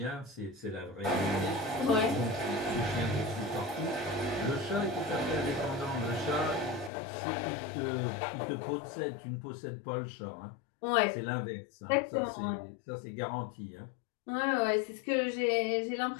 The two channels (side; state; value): right; drops out; at 6.9 s